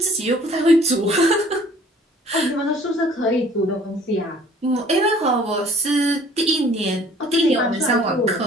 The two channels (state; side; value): normal; both; correlation 0.54